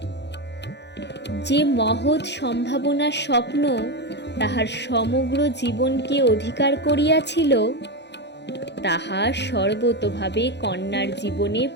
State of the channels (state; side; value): late; right; 0.50 ms